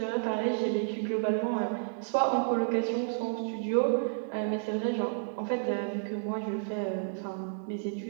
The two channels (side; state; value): left; silent; digital silence